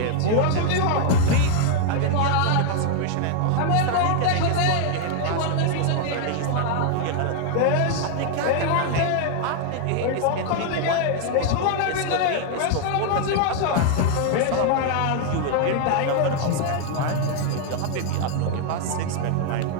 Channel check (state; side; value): different; both; correlation 0.00